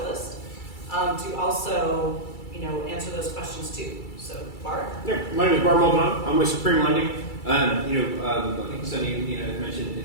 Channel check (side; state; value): right; late; 2.3 ms